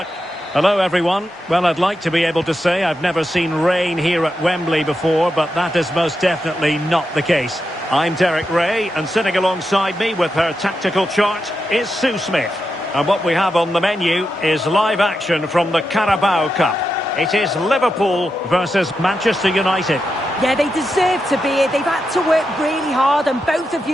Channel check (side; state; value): both; normal; correlation 0.87